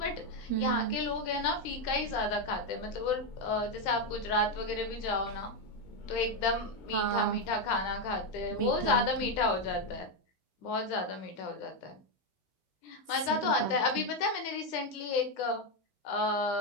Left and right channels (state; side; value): late; right; 9.1 ms